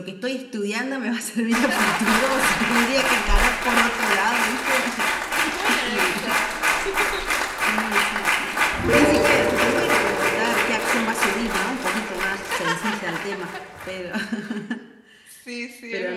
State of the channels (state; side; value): identical; both; correlation 1.00